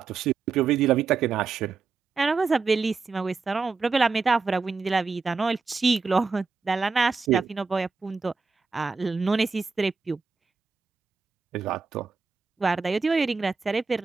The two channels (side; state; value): left; quieter; 4.7 dB